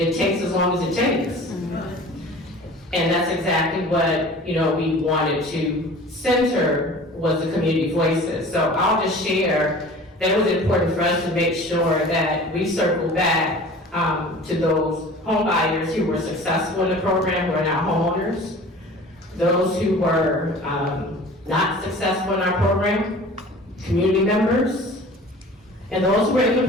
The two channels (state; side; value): normal; both; correlation 0.43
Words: takes as long as it takes. And that's exactly what we wanted to center, was the community voices. So I'll just share that it was important for us to make sure that we circle back to those home buyers who were successful in the program, who are now homeowners, those who were not successful in our program, community members, and those who were in the